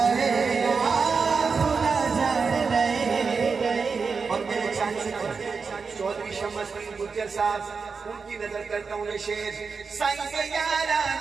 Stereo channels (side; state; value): left; quieter; 5.1 dB